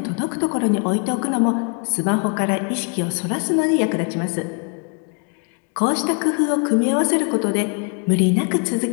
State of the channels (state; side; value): quieter; right; 37.9 dB